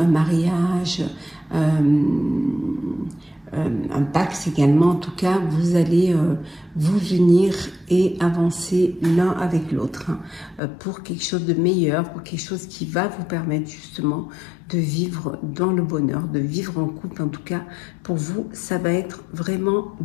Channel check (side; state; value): right; drops out; at 10.6 s